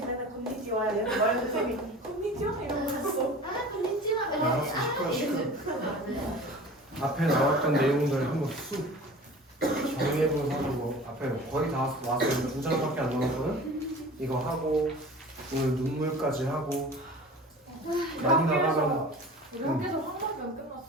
곤니찌와 이러는 거야. 쌤이 곤니찌와 이러고 있어. 알았어, 시끄러. 앞에 나왔던 내용들 한번 쑥 정리해보면서 하고 앞에 거의 다 왔어요. 두 장밖에 안 남았거든. 이거 하고 오늘 눈물까지 하고 많이 나가면 여기서 한 번도 안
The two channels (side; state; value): both; normal; correlation 0.40